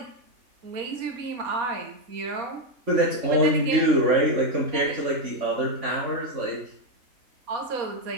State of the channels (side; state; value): left; late; 3.5 ms